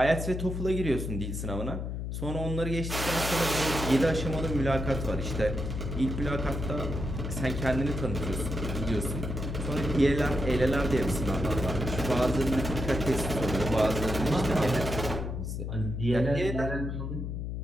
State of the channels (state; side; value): noise; left; hum, 4 dB below the sound